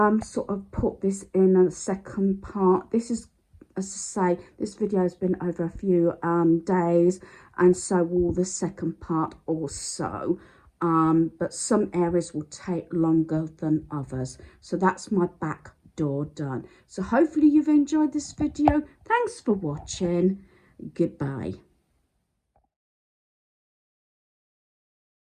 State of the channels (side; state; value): both; identical; correlation 1.00